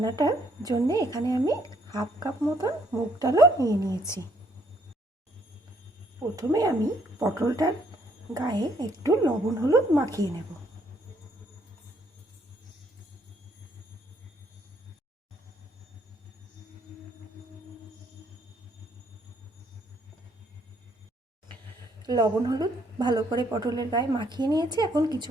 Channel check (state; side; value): normal; both; correlation 0.68